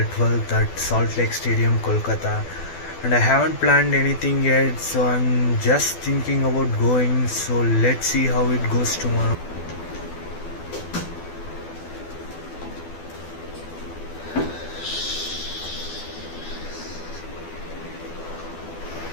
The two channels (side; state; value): right; late; 12 ms